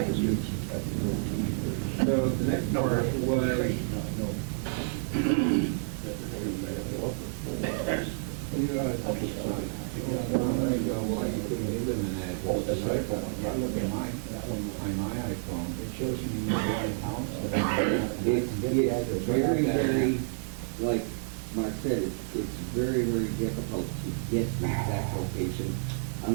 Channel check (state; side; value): silent; left; digital silence